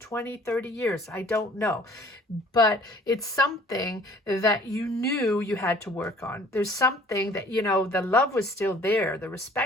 30 years, I don't know, but it's something that you knew you had to work on. There's something that, you know, the love was still there, the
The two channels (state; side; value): normal; both; correlation 0.53